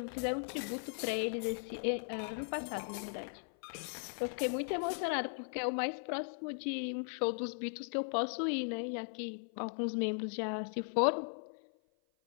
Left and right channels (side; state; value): right; silent; 53 dB below the other